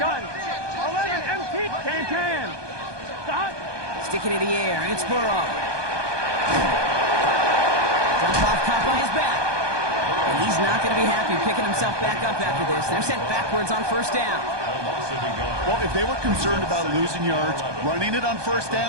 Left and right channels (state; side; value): late; left; 1.2 ms